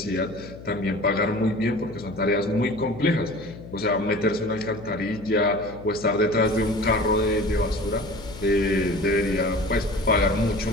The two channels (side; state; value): left; noise; hum, 15 dB below the sound